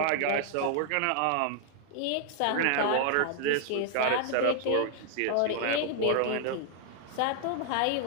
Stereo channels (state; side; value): different; both; correlation 0.00